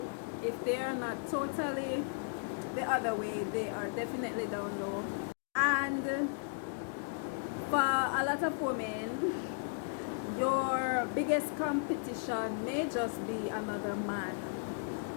If they are not totally the other way, they are definitely down low. And for a lot of women, your biggest competition may just be another man.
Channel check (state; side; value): silent; right; digital silence